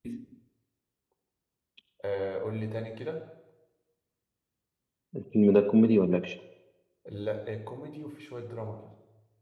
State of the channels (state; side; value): identical; both; correlation 1.00